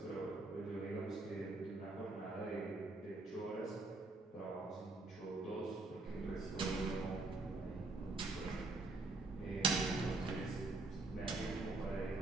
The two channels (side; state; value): left; quieter; 3.2 dB